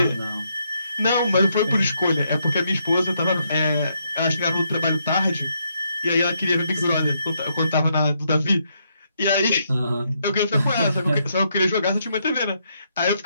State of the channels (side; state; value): both; inverted; correlation -0.77